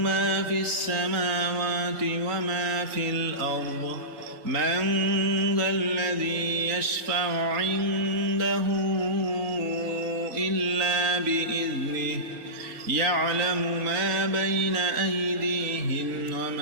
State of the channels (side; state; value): left; late; 4.2 ms